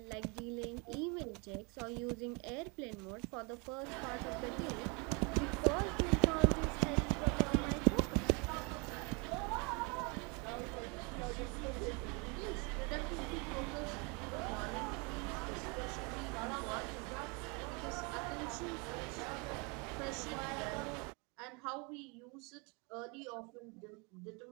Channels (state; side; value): quieter; left; 31.1 dB